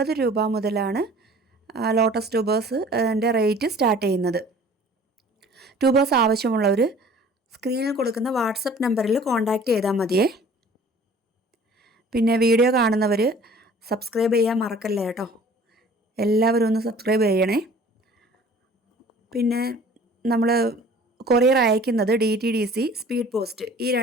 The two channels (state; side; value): normal; both; correlation 0.49